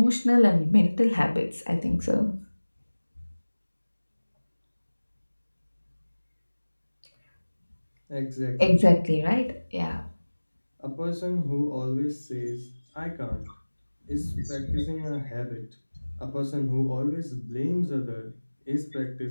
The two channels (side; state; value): both; inverted; correlation -1.00